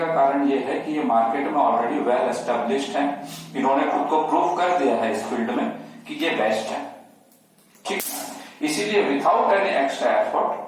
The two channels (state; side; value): identical; both; correlation 1.00